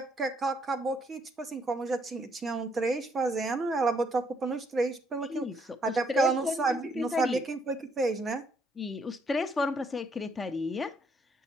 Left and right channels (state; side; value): normal; both; correlation 0.70